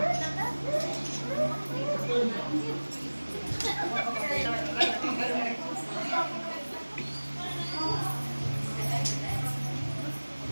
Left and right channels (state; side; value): inverted; both; correlation -1.00